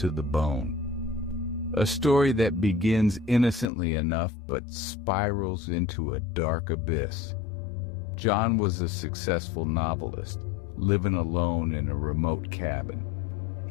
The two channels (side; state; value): right; drops out; at 3.7 s